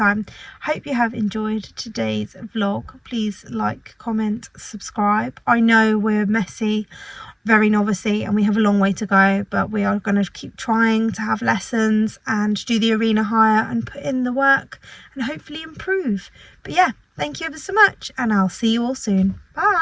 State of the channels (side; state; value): both; identical; correlation 1.00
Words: Hope you have enjoyed today's vlog. Please like, comment, subscribe. I know we're messy, very novicey, and we have a long way to go, but we are going to keep trying to have lessons and do the arena hire and put in the work and hopefully improve. But yeah, thank you ever so much, and I'll see you all soon.